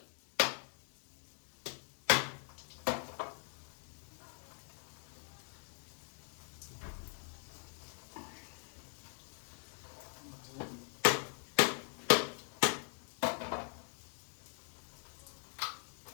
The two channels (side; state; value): right; silent; 50 dB below the other